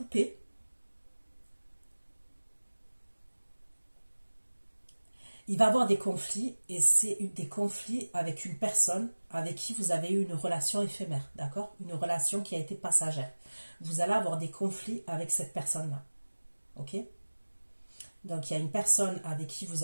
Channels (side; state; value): both; inverted; correlation -1.00